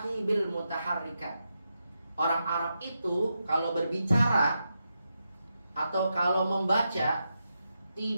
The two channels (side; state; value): both; inverted; correlation -0.86